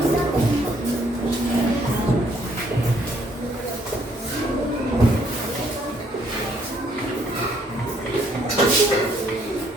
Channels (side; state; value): both; normal; correlation 0.67